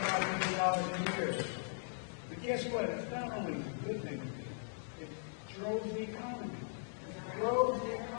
million a year. But guess what? It's not only a good thing. It drove the economy. It drove the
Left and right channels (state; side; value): silent; right; digital silence